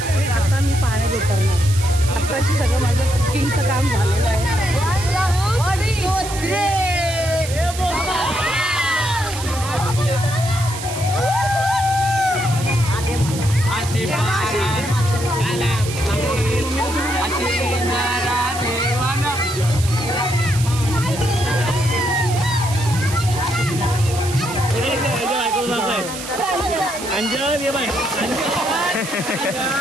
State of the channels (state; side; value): noise; right; hiss, 10 dB below the sound